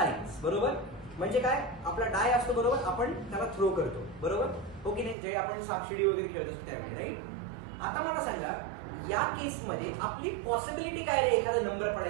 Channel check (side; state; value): left; drops out; at 5.2 s